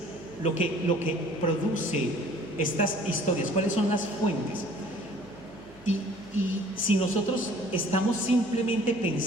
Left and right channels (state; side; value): noise; right; hum, 24 dB below the sound